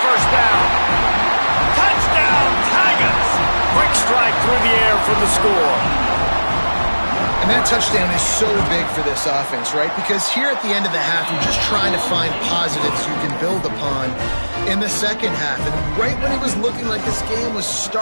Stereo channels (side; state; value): both; inverted; correlation -1.00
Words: first down. Touchdown, Tigers. Quick strike through the air for the score. And that touchdown is so big for this offense, right? Because here at the end of the half, you're just trying to find positives you can build upon in the second half. And right when it was looking like this game was